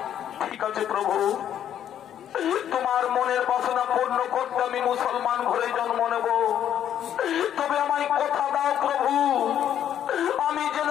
ঠিক আছে প্রভু, তোমার মনের বাসনা পূর্ণ করতে আমি মুসলমান ঘরে জন্ম নেব। তবে আমায় কথা দাও প্রভু, আমি যেন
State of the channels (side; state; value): right; quieter; 10.1 dB